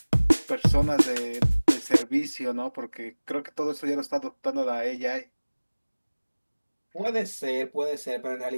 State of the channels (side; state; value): both; inverted; correlation -1.00